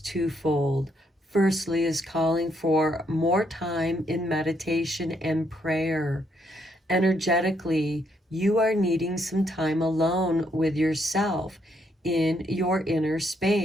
twofold. Firstly, is calling for more time in meditation and prayer. Energetically, you are needing some time alone with yourself in your inner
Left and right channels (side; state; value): both; normal; correlation 0.74